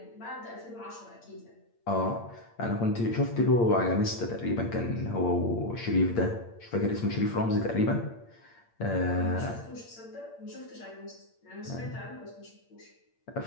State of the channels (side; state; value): right; late; 8.7 ms